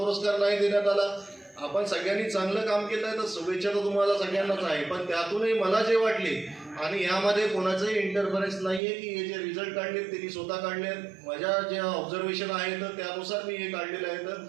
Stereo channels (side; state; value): left; drops out; at 8.8 s